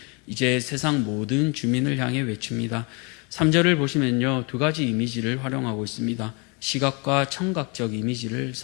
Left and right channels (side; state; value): right; quieter; 31.9 dB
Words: 이제 세상 모든 주민을 향해 외칩니다. 3절을 보시면요, 두 가지 이미지를 활용하고 있습니다. 시각과 청각적 이미지를